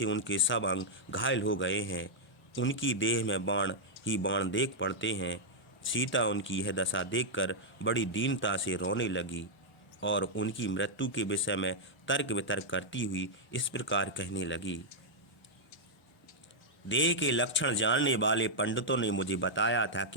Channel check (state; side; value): normal; both; correlation -0.05